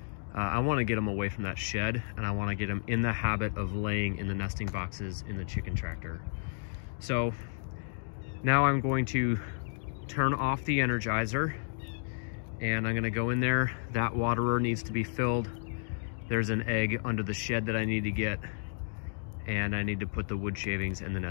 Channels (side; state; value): right; silent; digital silence